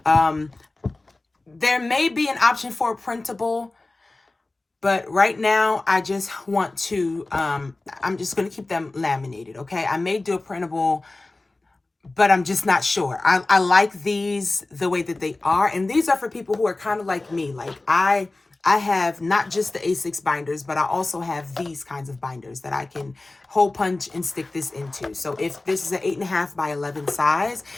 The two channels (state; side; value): quieter; right; 3.1 dB